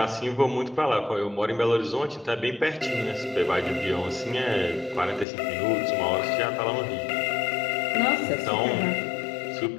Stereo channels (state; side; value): drops out; right; at 5.2 s